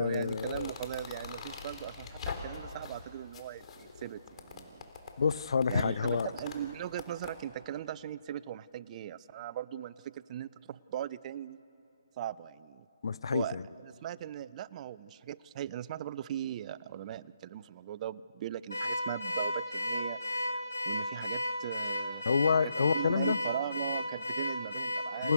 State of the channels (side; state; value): both; inverted; correlation -0.73